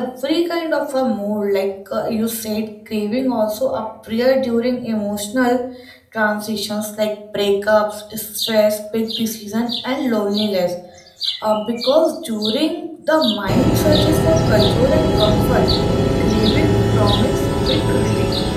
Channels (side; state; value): both; identical; correlation 1.00